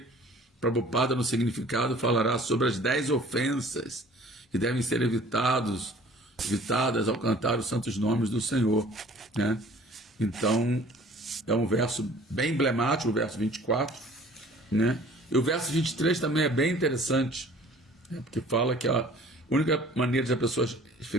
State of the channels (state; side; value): normal; both; correlation 0.50